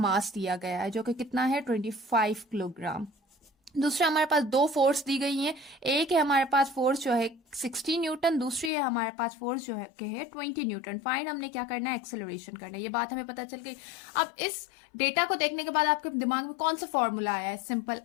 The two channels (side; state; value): right; drops out; at 8.7 s